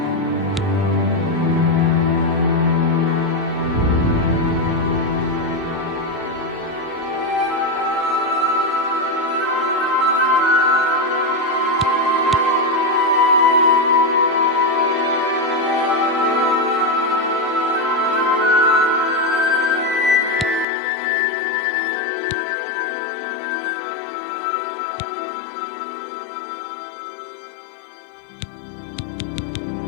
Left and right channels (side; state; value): right; drops out; at 20.7 s